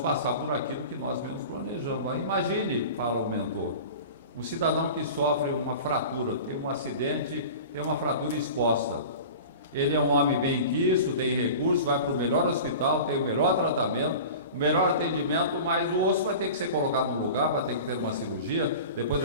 por aquilo que nós mesmos planejamos. Aí imagine, fala o mentor, um cidadão que sofre uma fratura, tem um acidente, tem uma fratura exposta. Ele é um homem bem quisto, tem recursos, vai para o melhor hospital, tem o melhor tratamento, o melhor atendimento, mas o osso vai ter que ser colocado no lugar, vai ter que ter uma cirurgia, depois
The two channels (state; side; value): inverted; both; correlation -0.36